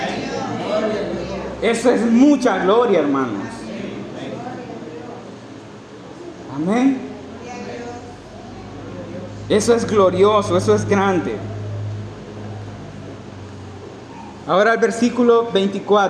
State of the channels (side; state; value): both; identical; correlation 1.00